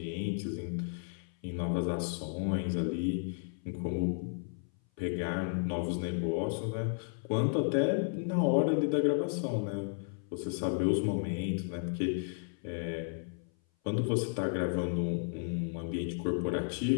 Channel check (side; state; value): right; silent; 56 dB below the other